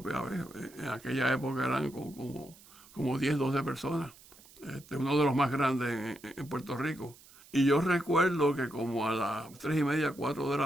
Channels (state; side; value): noise; right; hiss, 23 dB below the sound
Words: En aquella época eran como 10, 12 personas. Uno de los más grandes en Puerto Rico. Y yo recuerdo que como a las 3:30, 4 de la